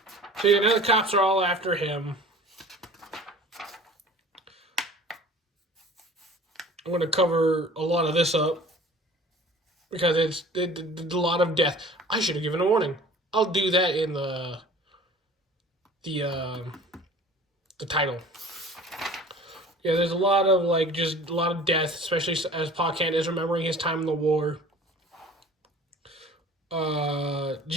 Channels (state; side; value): normal; both; correlation 0.45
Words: So now the cops are all after him. I'm going to cover a lot of this up because it's a lot of death. I should have given a warning. I'll do that in the title. Yeah, there's a lot of just a lot of death, especially as Pa Kent is remembering his time in the war.